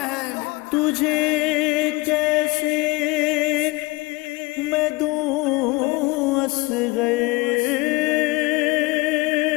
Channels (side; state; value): right; quieter; 23.9 dB